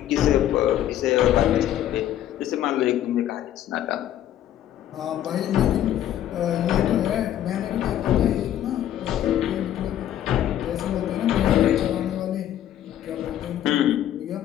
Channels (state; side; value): quieter; right; 11.7 dB